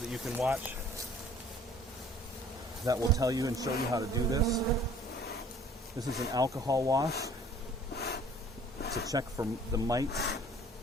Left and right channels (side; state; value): both; normal; correlation 0.53